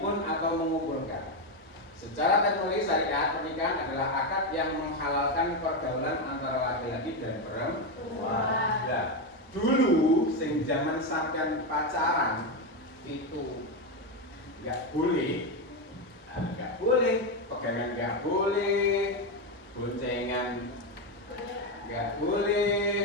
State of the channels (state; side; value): normal; both; correlation 0.09